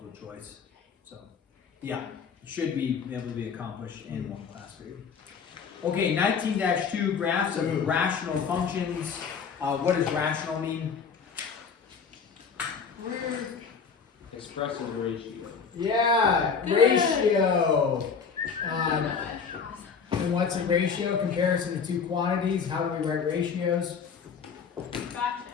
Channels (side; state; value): right; quieter; 6.0 dB